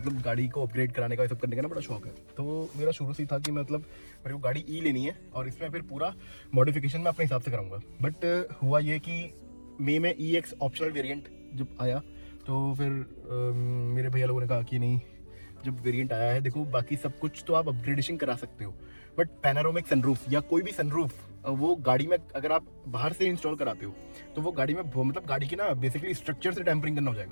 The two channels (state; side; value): inverted; both; correlation -1.00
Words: गाड़ी को अपग्रेड कराने का, ये सब करने का ना बड़ा शौक है। तो मेरा शुरू से ही था कि मतलब मेरे को गाड़ी ई लेनी है और इसमें फिर पूरा मॉडिफिकेशन मैं अपने हिसाब से कराऊंगा। बट हुआ ये कि मई में EX ऑप्शनल वेरिएंट जब आया, तो फिर मेरे भैया लोगों ने कहा कि नहीं, जब वेरिएंट आया है, देखो बाकी सब कुछ तो आप अपग्रेडेशन करा सकते हो, बट पैनारोमिक सनरूफ या कोई भी सनरूफ वो गाड़ी में अगर आप बाहर से इंस्टॉल कराते हो तो वो गाड़ी में मतलब गाड़ी की ना बेसिकली स्ट्रक्चर से टेम्परिंग करना हो